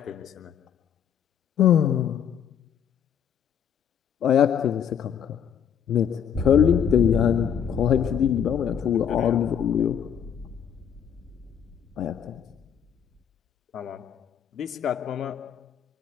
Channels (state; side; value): quieter; right; 8.3 dB